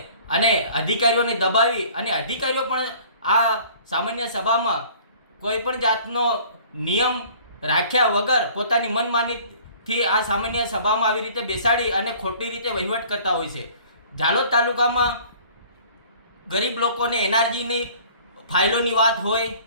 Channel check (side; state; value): both; inverted; correlation -0.51